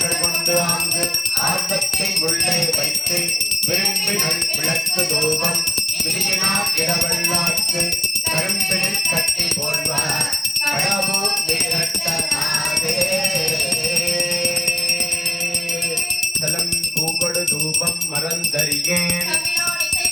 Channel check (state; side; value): normal; both; correlation 0.93